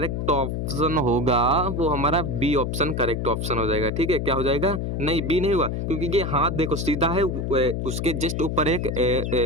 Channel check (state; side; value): noise; left; hum, 2 dB below the sound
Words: ऑप्शन होगा वो हमारा बी ऑप्शन करेक्ट ऑप्शन हो जाएगा, ठीक है। क्या हो जाएगा, नहीं बी नहीं हुआ, क्योंकि ये हाथ देखो सीधा है, उसके जस्ट ऊपर एक